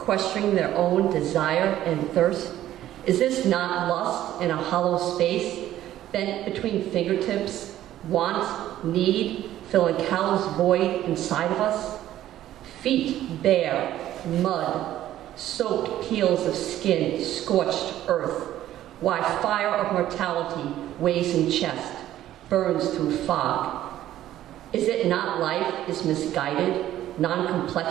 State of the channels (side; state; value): left; quieter; 13.0 dB